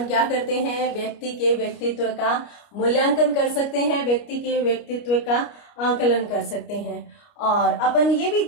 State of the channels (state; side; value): late; right; 29 ms